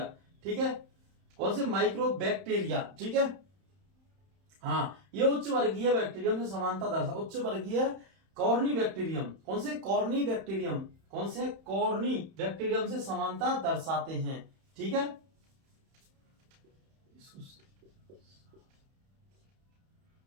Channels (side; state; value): left; late; 31 ms